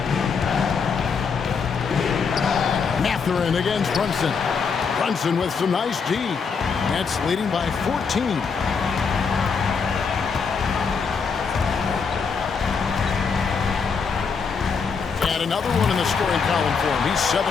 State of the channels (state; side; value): quieter; right; 5.6 dB